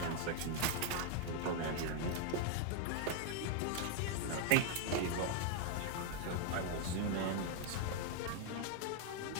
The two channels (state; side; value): different; both; correlation 0.00